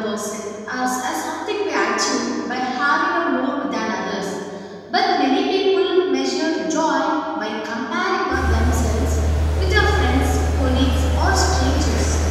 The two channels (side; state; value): both; identical; correlation 1.00